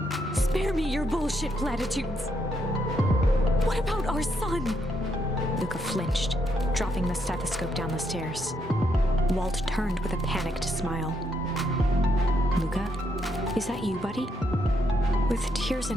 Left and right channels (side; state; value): both; normal; correlation 0.77